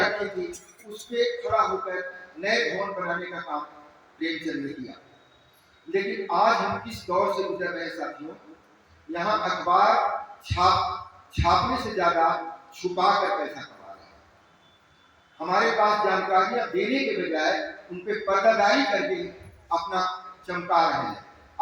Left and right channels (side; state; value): both; identical; correlation 1.00